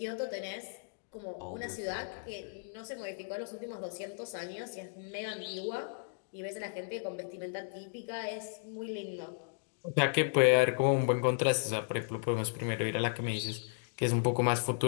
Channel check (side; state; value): right; silent; digital silence